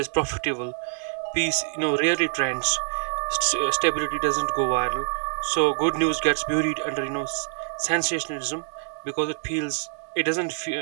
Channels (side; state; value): left; silent; digital silence